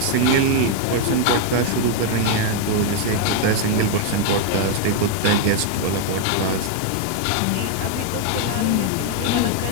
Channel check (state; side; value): different; both; correlation 0.00